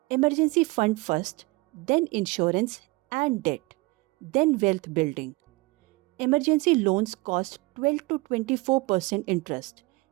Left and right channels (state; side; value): quieter; left; 24.1 dB